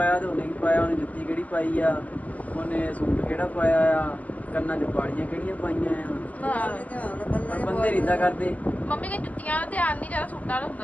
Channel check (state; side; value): late; right; 0.075 ms